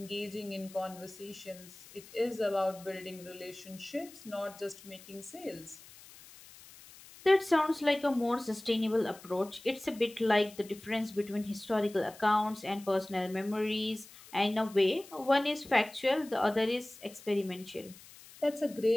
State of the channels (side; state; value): left; noise; hiss, 20 dB below the sound